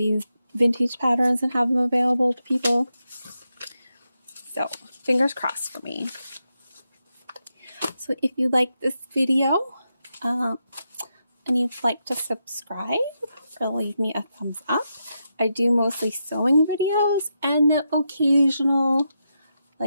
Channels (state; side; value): inverted; both; correlation -0.85